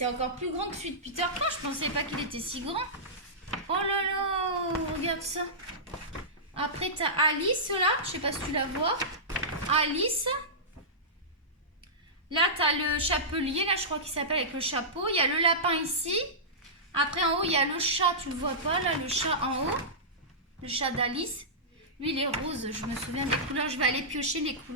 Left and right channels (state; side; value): normal; both; correlation -0.16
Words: encore plus grand que celui de Peter Pan. Je pensais pas qu'il était si grand. Oh là là, regarde ça. Après, t'as Alice, là. Je sais pas si tu la vois. Alice. Là, tu as le chapelier, là, je crois qu'il s'appelle avec le chapeau. Il y a le lapin ici. Après, en haut, il y a le chat, tu le vois pas, là, le chat en haut. Le chat d'Alice. Lui, il est rose. Je me souviens des couleurs. Je vais aller piocher les